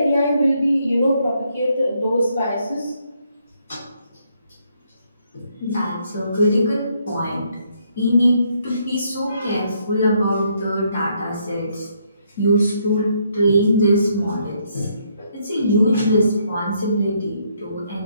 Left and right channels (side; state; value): both; inverted; correlation -0.72